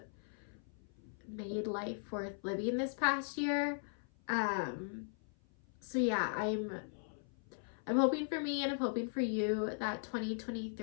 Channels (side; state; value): right; silent; 52 dB below the other